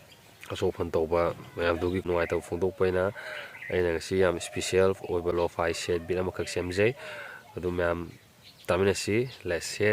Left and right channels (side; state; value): both; identical; correlation 1.00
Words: asofan tawba mayam dugi nuai taw phongdok paina aina ngasi yam special oiba Lofi set bit amakak semjai adu mayam taminasi. Let's